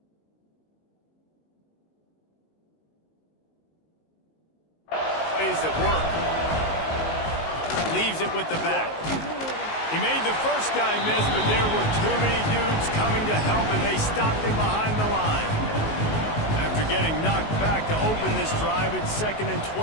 Plays at work. Leaves it with the back. He made the first guy miss, but there were too many dudes coming to help, and they stopped him behind the line. After getting knocked back to open this drive, it's 2nd and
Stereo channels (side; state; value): right; late; 19 ms